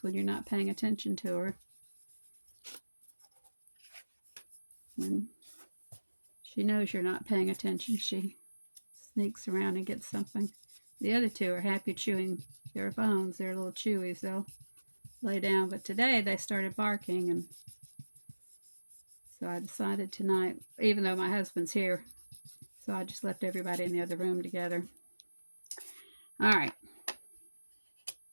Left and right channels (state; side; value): inverted; both; correlation -1.00